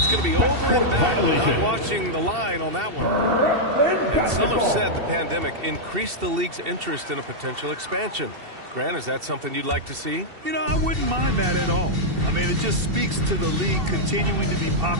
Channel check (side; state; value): left; late; 2.7 ms